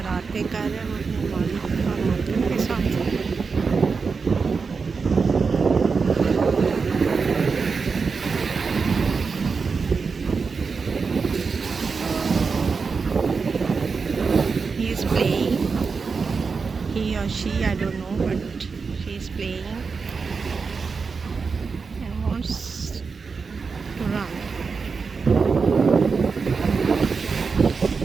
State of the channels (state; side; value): quieter; left; 5.0 dB